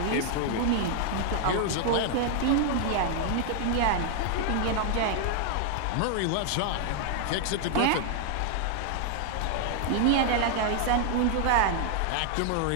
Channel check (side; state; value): both; different; correlation 0.00